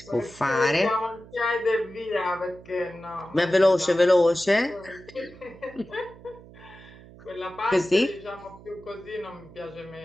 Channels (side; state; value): right; noise; hum, 20 dB below the sound